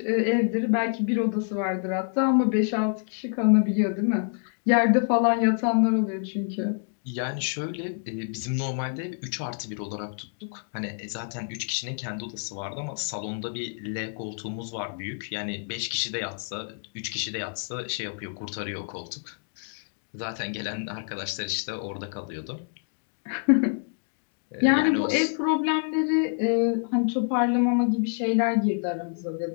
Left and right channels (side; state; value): right; silent; 60 dB below the other